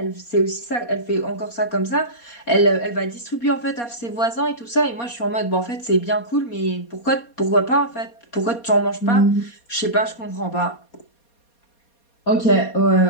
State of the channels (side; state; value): right; late; 4.2 ms